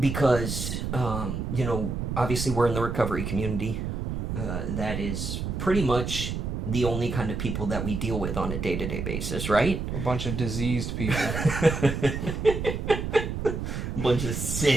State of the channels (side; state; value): right; noise; rumble, 3 dB below the sound